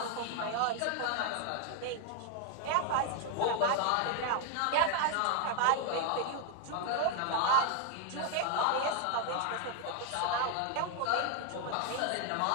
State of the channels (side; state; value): both; different; correlation 0.01